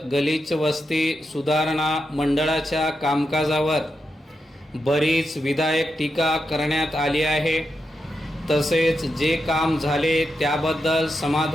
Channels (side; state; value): both; normal; correlation 0.86